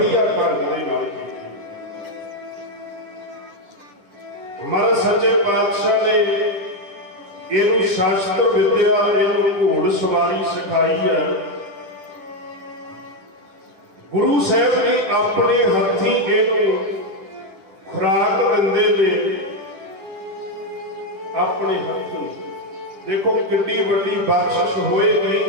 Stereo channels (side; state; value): left; late; 10 ms